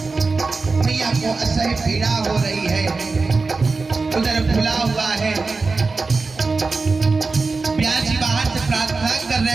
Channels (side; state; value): left; quieter; 4.0 dB